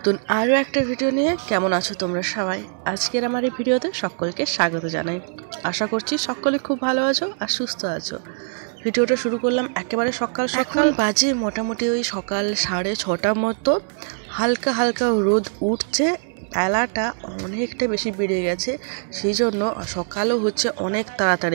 আরও একটা ভিডিও নিয়ে। কেমন আছো তোমরা সবাই? আজকের আমার এই ভিডিওতে সকলকে স্বাগত জানাই। আশা করছি সকলে খুব ভালো আছো আর সুস্থ আছো। ভিডিওটা শুরু করলাম একেবারে সকাল সকাল, বাজে মোটামুটি ওই সকাল 6:30 মতো। হালকা হালকা রোদ উঠছে, বেলাটা অনেকটা বেশি বেড়ে গেছে, সেই জন্য সকালও হচ্ছে অনেক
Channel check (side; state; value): left; silent; 64 dB below the other